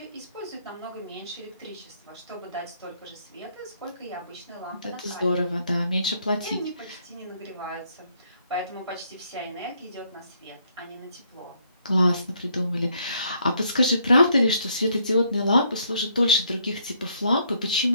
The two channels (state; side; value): inverted; both; correlation -0.69